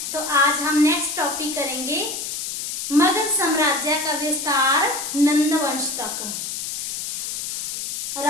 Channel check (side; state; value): left; noise; hiss, 4 dB below the sound